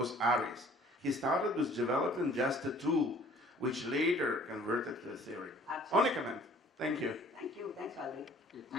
ARIZ. He started with developing just a tool, which later converted to a theory. Absolutely. Only comment. Thank you. Thank you. Thanks, Valerie. Okay,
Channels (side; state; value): both; normal; correlation 0.53